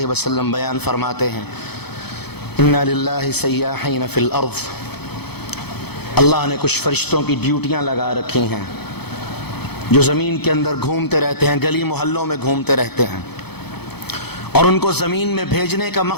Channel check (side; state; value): right; late; 0.97 ms